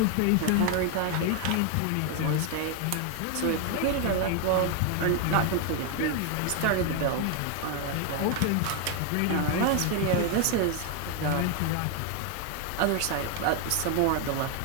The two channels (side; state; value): both; different; correlation 0.01